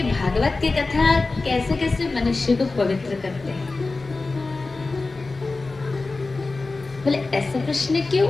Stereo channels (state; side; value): quieter; right; 3.6 dB